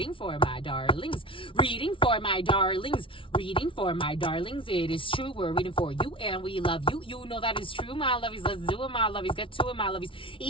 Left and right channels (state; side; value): late; right; 0.25 ms